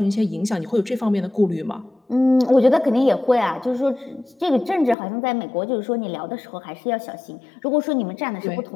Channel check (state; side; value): drops out; right; at 5.0 s